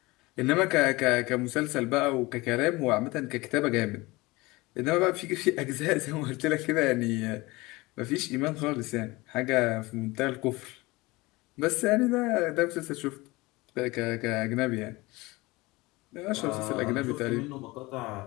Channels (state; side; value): quieter; right; 22.0 dB